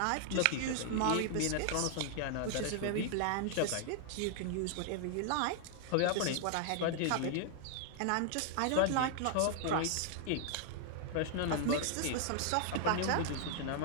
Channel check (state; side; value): different; both; correlation 0.00